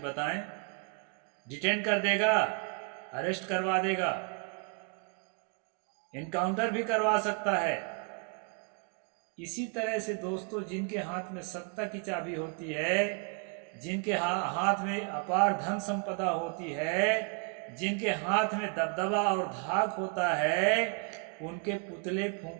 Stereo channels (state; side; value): quieter; left; 35.4 dB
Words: बताएं, डिटेन कर देगा, अरेस्ट करवा देगा, इनकाउंटर भी करवा सकता है। इसी तरह से दोस्तों, जिनके हाथ में सत्ता की चाबी होती है, जिनके हाथ में अपार धन संपदा होती है, जिनके हाथ में दबदबा और धाक होता है, उनके पुतले